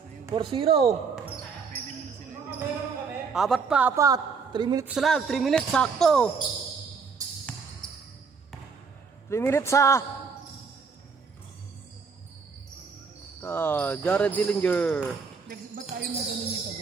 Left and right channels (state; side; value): quieter; left; 5.3 dB